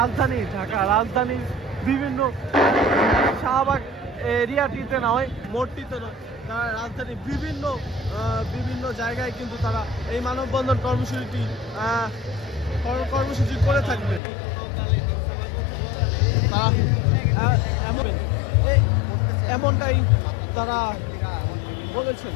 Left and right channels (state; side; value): drops out; right; at 14.2 s